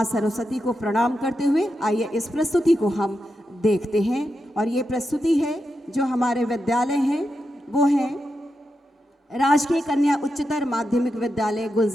सरस्वती को प्रणाम करते हुए आइए इस प्रस्तुति को हम देखते हैं। और ये प्रस्तुति है जो हमारे विद्यालय हैं, वो है राजकीय कन्या उच्चतर माध्यमिक विद्यालय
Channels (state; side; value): normal; both; correlation 0.87